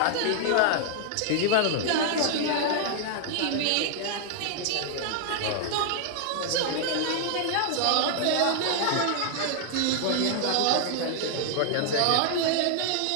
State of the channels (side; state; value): both; different; correlation -0.01